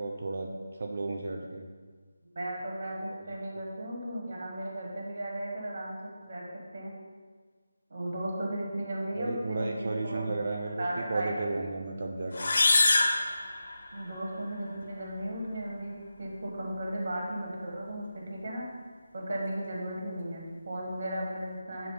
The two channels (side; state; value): both; inverted; correlation -0.90